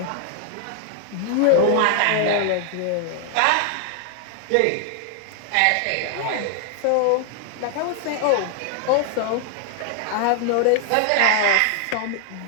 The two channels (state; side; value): different; both; correlation 0.00